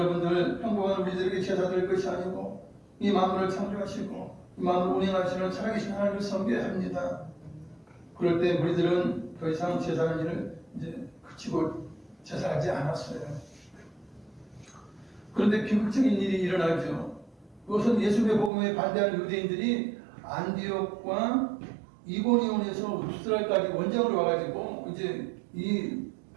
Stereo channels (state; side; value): drops out; left; at 18.5 s